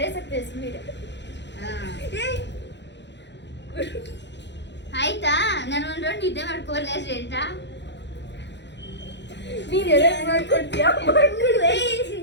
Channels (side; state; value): right; late; 0.52 ms